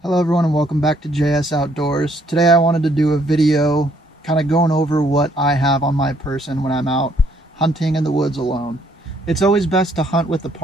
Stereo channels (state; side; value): normal; both; correlation 0.67